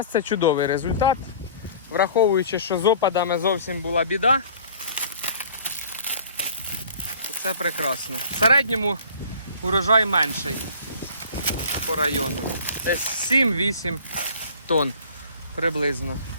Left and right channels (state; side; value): inverted; both; correlation -0.48